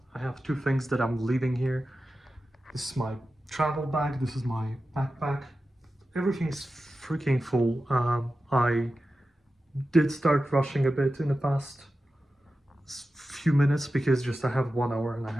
I have two things that I'm leaving here. This is my travel bag, this is my backpack. Everything's freaking full. I did start rushing a bit in the past few minutes because just I have 1 hour and I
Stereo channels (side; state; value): both; normal; correlation 0.93